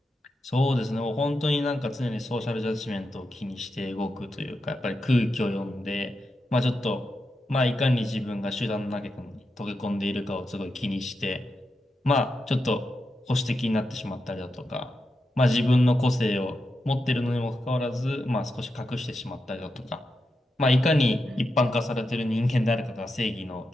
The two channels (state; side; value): normal; both; correlation 0.87